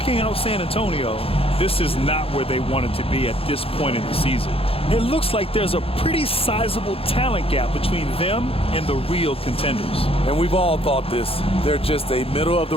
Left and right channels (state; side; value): late; right; 0.27 ms